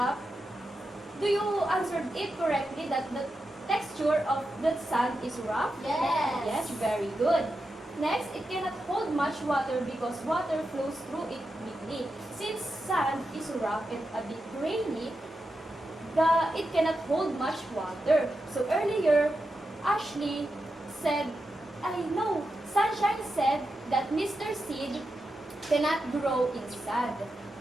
do you answer it correctly that the texture of the sand is rough? Yes. Yes, very good. Next, it cannot hold much water because water flows through it quickly. Since sand is rough and a bit grainy, it cannot hold much water. So earlier, Ashley said, Sunshine said that Mr. Seed cannot grow in sand.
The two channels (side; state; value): both; normal; correlation 0.88